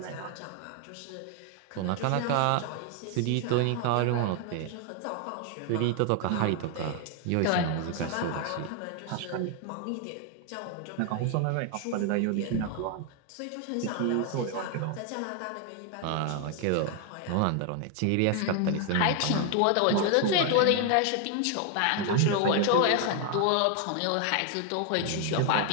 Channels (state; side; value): different; both; correlation 0.00